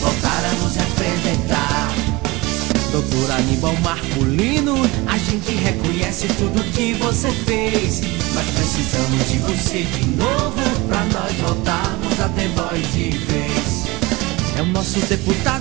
a nos representar. Doutor Aníbal Marculino, a gente reconhece tudo que você fez, mas precisamos de você de novo, pra nós voltarmos a ter voz de vez. É o nosso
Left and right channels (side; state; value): left; quieter; 23.0 dB